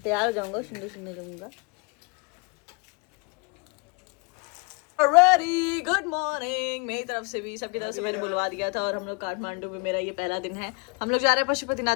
तैयार हो जाऊंगा, सुंदर सुंदर जाऊंगा। रेडी गुड मॉर्निंग मेरी तरफ से भी, सबकी तरफ से मैंने बुलवा दिया था। और हम लोग काठमांडू में, मेरा ये पहला दिन है। हम लोग जा रहे हैं पशुपतिनाथ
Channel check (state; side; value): quieter; right; 31.4 dB